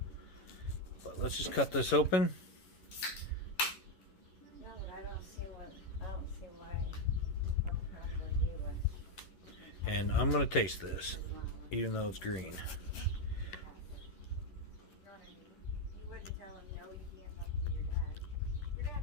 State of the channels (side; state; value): right; late; 11 ms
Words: But let's just cut this open. No, but I don't see why what problem would be with. And I'm gonna taste this, even though it's green. You wouldn't tell him no, you can't talk to your dad. Your dad